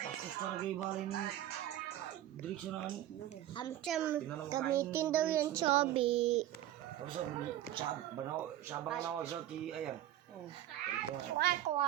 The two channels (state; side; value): quieter; left; 13.0 dB